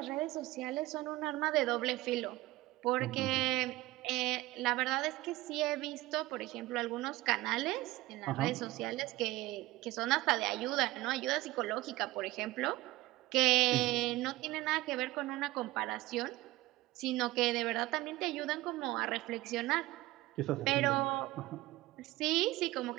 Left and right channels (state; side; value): quieter; left; 18.5 dB